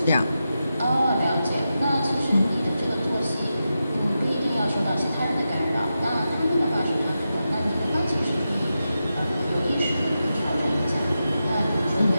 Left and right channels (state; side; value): inverted; both; correlation -0.90